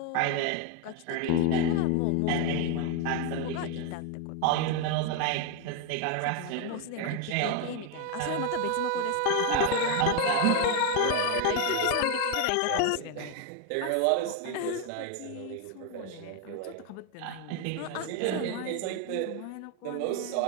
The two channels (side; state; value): both; different; correlation 0.01